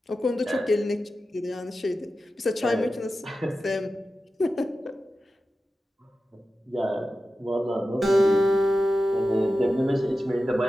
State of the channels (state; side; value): normal; both; correlation 0.93